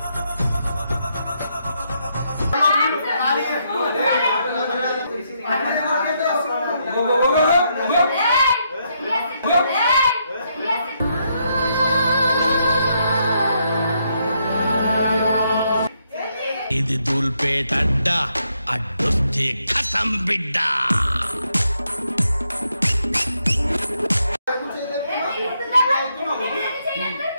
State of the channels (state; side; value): inverted; both; correlation -0.77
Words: ఇది దూల్పేట అడ్డా అడ్డొస్తే ఖతం బిడ్డ